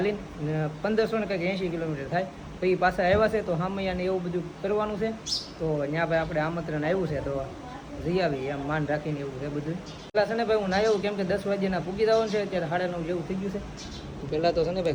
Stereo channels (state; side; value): identical; both; correlation 1.00